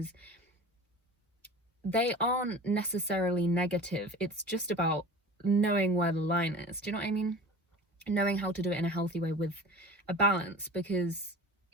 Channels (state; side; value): normal; both; correlation 0.38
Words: they aren't necessarily negative. It's just about knowing where the line is. Do you know what I mean? Knowing how to do it in a healthy way with a balance, because